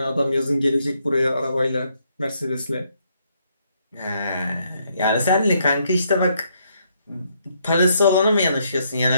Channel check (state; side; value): inverted; both; correlation -0.73